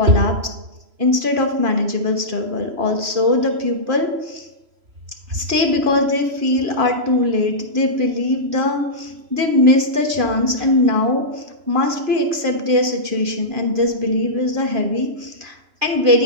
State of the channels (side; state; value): left; late; 2.5 ms